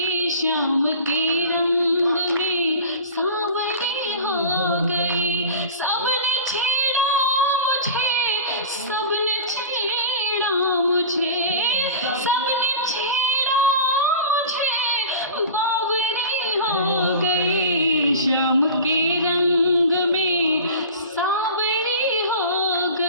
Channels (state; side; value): inverted; both; correlation -0.35